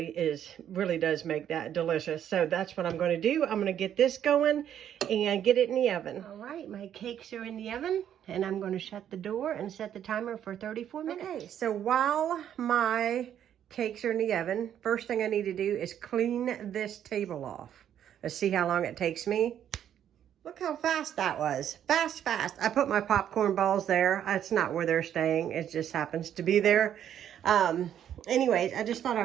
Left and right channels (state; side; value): quieter; left; 10.0 dB